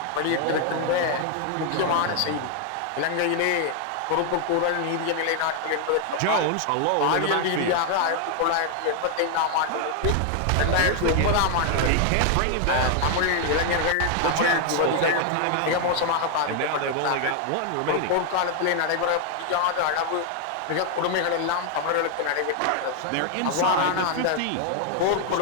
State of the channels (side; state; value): both; different; correlation 0.00